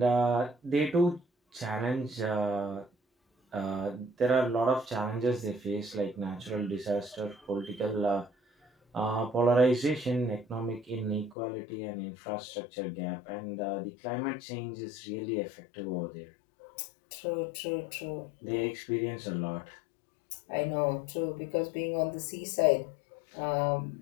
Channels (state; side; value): drops out; right; at 11.4 s